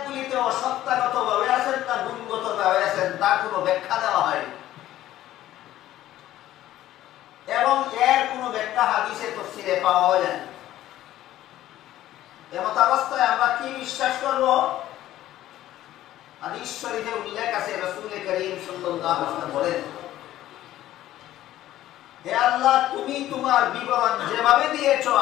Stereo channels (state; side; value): quieter; right; 13.8 dB